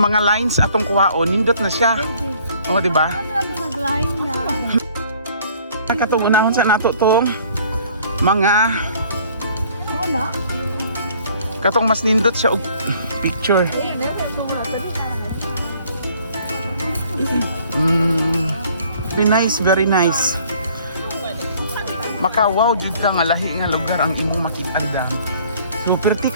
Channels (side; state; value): both; inverted; correlation -0.57